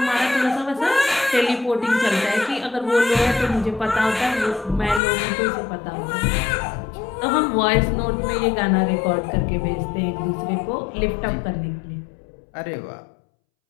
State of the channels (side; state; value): right; drops out; at 5.0 s